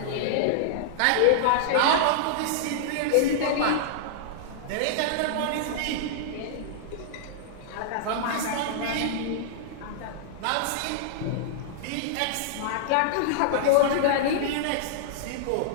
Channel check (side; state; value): both; different; correlation -0.01